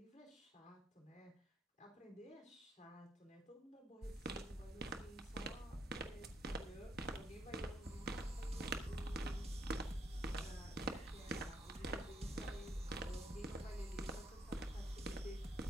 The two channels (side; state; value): both; normal; correlation 0.75